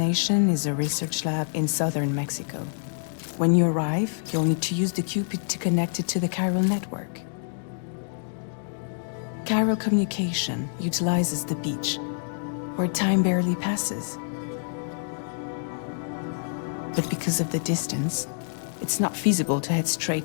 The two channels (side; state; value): right; silent; digital silence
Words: is a research lab in southern Mexico. When you arrive, you'll need to use the Cupid to connect it to the chiral network. Chiral communication utilizes the beach, where time barely passes. But because of the distance, it's not feasible to head